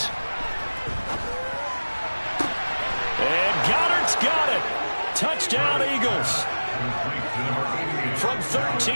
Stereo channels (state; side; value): inverted; both; correlation -1.00